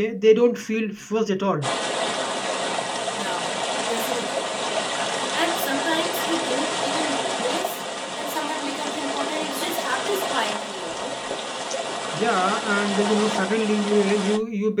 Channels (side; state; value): both; identical; correlation 1.00